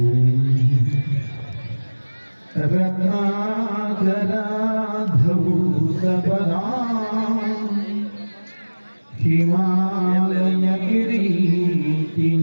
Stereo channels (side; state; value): both; inverted; correlation -1.00